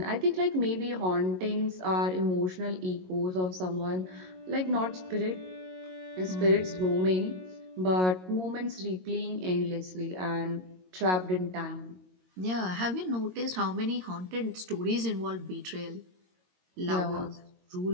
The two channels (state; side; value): late; left; 22 ms